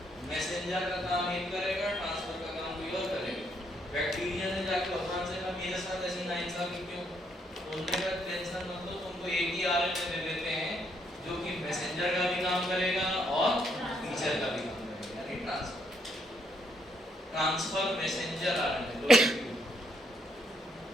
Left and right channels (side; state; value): both; normal; correlation 0.73